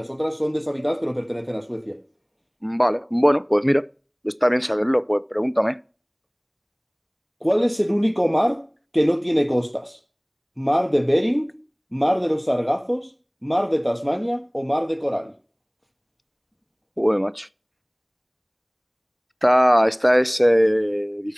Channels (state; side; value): identical; both; correlation 1.00